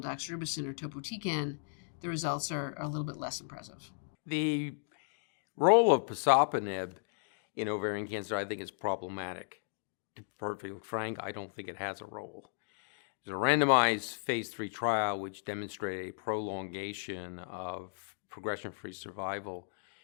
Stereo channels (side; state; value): right; silent; digital silence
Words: doxorubicin or topotecan, the results are a little bit less impressive. The role of pazopanib in ovarian cancer, I think, is problematic. To be perfectly frank, I don't think it has a role. There's a randomized phase 3 trial which demonstrated a prolongation of progression-free survival